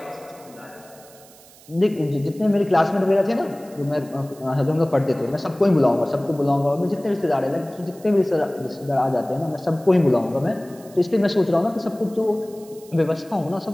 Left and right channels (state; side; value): noise; right; hiss, 24 dB below the sound